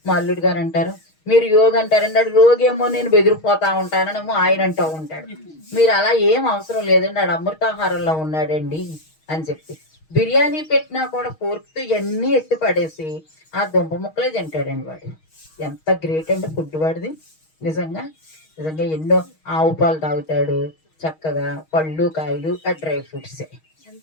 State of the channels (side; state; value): right; late; 6.4 ms